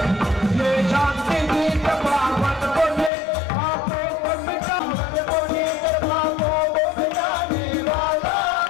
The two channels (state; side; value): drops out; right; at 3.1 s